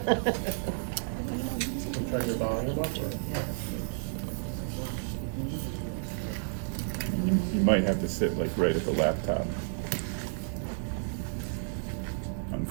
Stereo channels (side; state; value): left; silent; 57 dB below the other